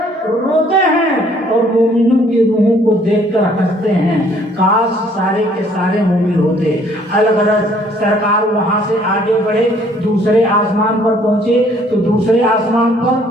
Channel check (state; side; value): normal; both; correlation 0.61